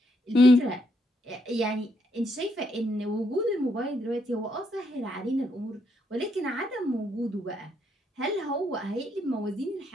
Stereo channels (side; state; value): both; normal; correlation 0.75